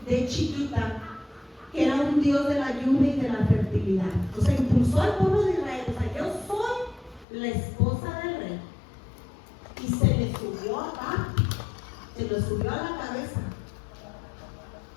de chiquita? Que era un dios de la lluvia y de la fertilidad. O sea, impulsó al pueblo de Israel. O sea, yo soy la esposa del rey. Y se le subió acá, se le subió a la cabeza.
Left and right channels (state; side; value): drops out; right; at 7.2 s